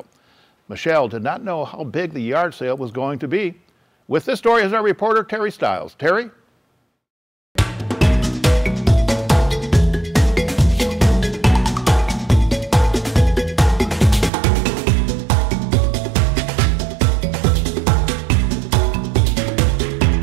Michelle did not know how big the yard sale was going to be. With this story is our reporter, Teri Stiles. Teri?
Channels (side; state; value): left; drops out; at 14.3 s